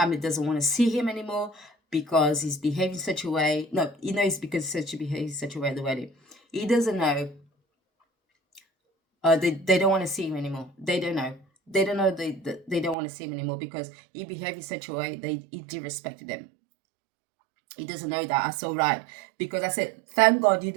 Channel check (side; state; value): left; drops out; at 13.0 s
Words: doesn't want to see him anymore because he's behaving such a way. No, he knows because he behaves such a way at the wedding. He doesn't know. They don't want to see him anymore. They don't know. They don't know they don't want to see him anymore because he behaved in such a way he disrespected them. He doesn't know that. I saw right because I said, thank God you're